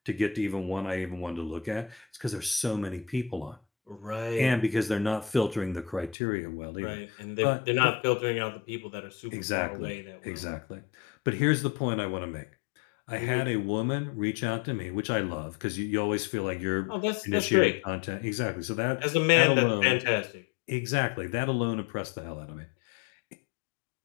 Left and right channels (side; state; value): right; drops out; at 6.2 s